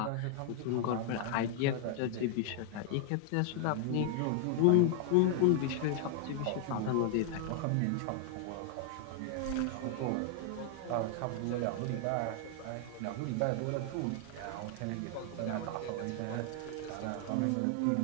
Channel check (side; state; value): both; different; correlation 0.00